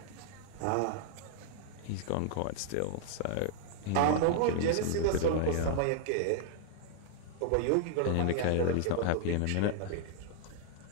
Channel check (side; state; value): both; different; correlation -0.01